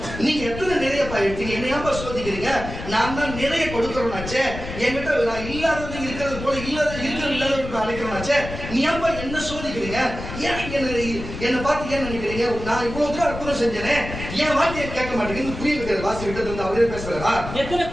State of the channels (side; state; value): left; noise; rumble, 9 dB below the sound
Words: நீங்க எத்தனை நிறைய எடுத்தீங்க, என்னையாப்பா சோதிக்கிறீங்க? நான் தான் நிறைய கொடுக்கறோம்னாச்சே. என்கிட்ட நான் இல்லாதது இருக்கிறது போல இல்லாதவருக்கு அழைக்கிறோம்னாச்சே. நீ ஏன்பா என்ன சோதிக்கிறீங்க? ஏன் என்ன பார்த்து ஏன் நினைக்கிறீங்க? நான் இவ்வளவு தூரம் அற்புதம் செஞ்சேனே, என் வார்த்தையை கேட்க மாட்டேங்குது. புரிய வைக்கிறது வாசி விட்டது வந்து அவரே பேசுறாரா?